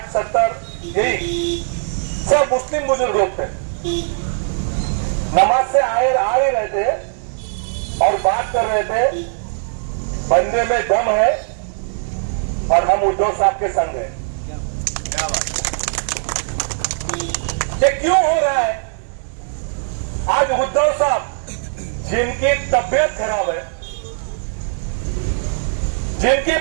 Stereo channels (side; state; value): left; silent; digital silence